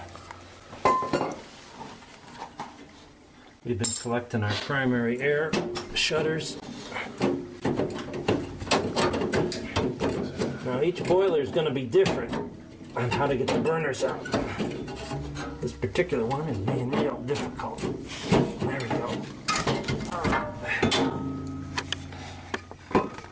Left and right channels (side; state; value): both; identical; correlation 1.00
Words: We've been collecting our primary air shutters. Now each boiler is going to be different on how to get the burners out. This particular one is being real difficult. There we go.